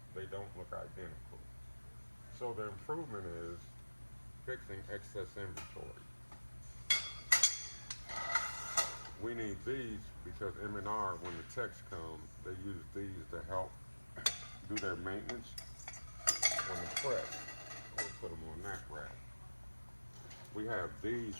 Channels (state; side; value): inverted; both; correlation -1.00